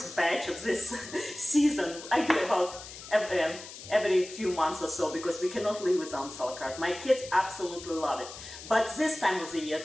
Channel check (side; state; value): left; noise; hiss, 14 dB below the sound